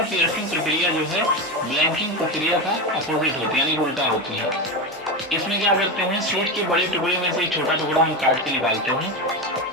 पियर्सिंग प्रक्रिया जो है ब्लैंकिंग प्रक्रिया का अपोजिट होती है यानी उल्टा होती है। इसमें क्या करते हैं, सीट के बड़े टुकड़े में से एक छोटा टुकड़ा हम काट के निकालते हैं।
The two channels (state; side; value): normal; both; correlation 0.17